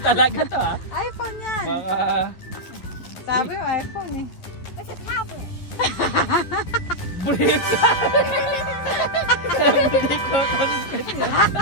talaga to ha. iPhone yan. Baka... Sabi mo, iPhone eh. It's a tablet. Brick! Everyday content.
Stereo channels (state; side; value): late; right; 11 ms